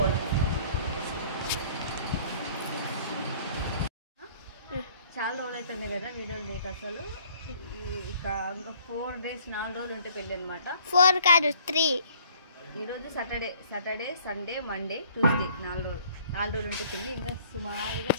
చాలా రోజులు అవుతుంది కదా వీడియోలు లేక. అసలు ఇక ఇంకా 4 days 4 రోజులు ఉంటే పెళ్ళి అనమాట. 4 కాదు 3. ఈరోజు సాటర్డే సండే మండే ట్యూస్డే 4 రోజులు ఉంటే పెళ్ళి. ఇంకా సుమారుగా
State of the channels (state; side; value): inverted; both; correlation -0.57